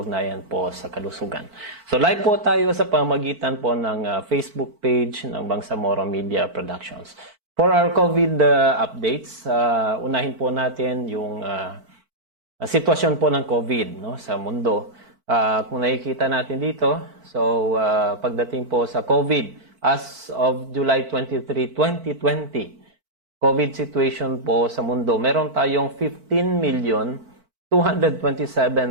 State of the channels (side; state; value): left; late; 4.5 ms